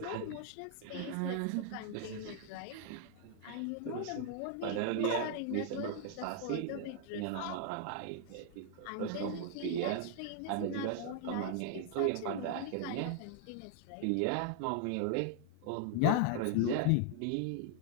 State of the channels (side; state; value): both; different; correlation 0.00